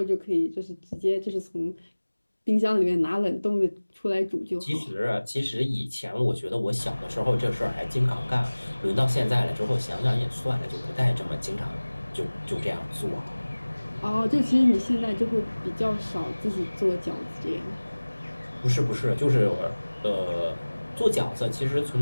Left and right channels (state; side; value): inverted; both; correlation -1.00